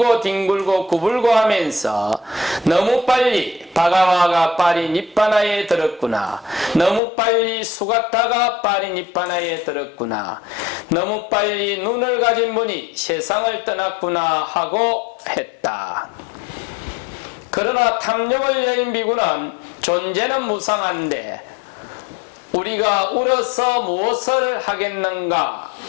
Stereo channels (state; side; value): drops out; right; at 7.0 s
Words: 뒹굴고 구불고 하면서 너무 빨리 바가와가 파리 니파나에 들었구나. 너무 빨리 수가타가 파리 니파나에 들었구나. 너무 빨리 눈을 가진 분이 세상을 떠났구나 하고 했다. 그러나 탐욕을 여인 비구는 존재는 무상한데 우리가 울어서 무엇을 하겠는가